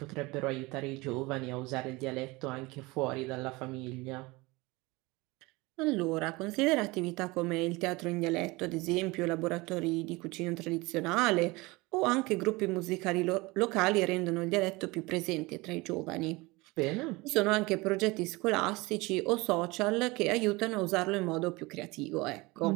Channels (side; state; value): left; quieter; 23.3 dB